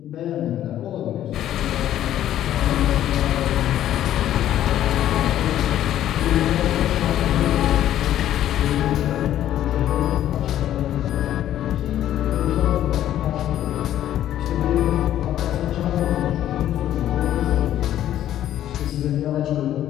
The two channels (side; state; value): right; quieter; 12.0 dB